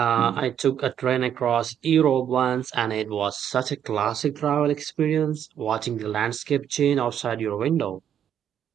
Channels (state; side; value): quieter; left; 9.3 dB